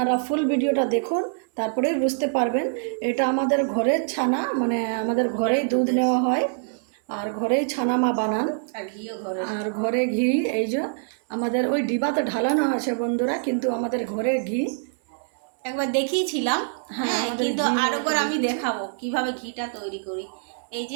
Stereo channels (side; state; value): left; silent; 62 dB below the other